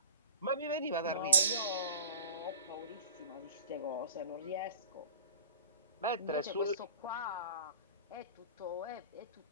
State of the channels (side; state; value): both; inverted; correlation -0.41